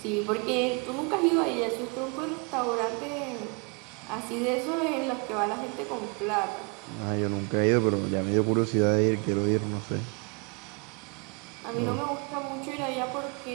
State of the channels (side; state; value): left; quieter; 33.6 dB